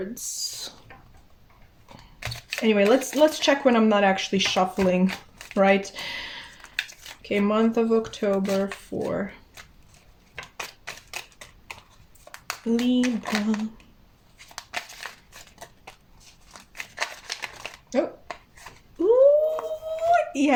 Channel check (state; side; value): identical; both; correlation 1.00